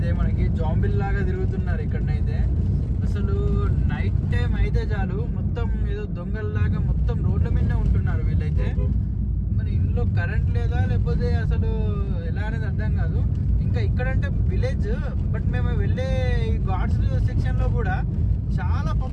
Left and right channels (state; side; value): identical; both; correlation 1.00